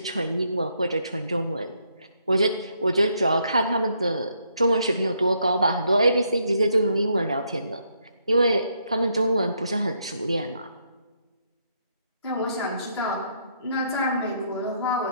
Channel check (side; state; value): both; inverted; correlation -0.74